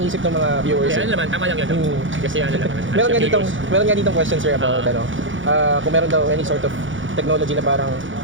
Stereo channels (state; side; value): late; left; 0.56 ms